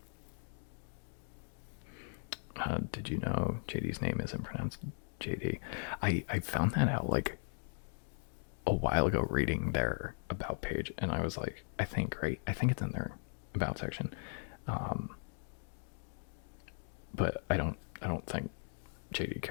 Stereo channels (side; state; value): right; silent; digital silence